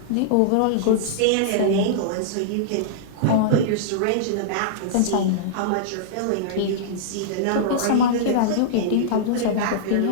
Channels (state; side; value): different; both; correlation -0.02